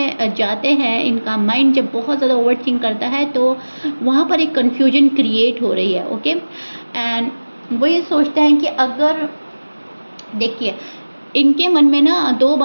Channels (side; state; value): both; inverted; correlation -1.00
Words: जाते हैं, इनका माइंड जब बहुत ज़्यादा ओवर थिंक करता है, तो वहाँ पर एक कन्फ्यूजन क्रिएट हो रही है। ओके, एंड वो ये सोचते हैं कि अगर, देखिए, इनके मन में ना दो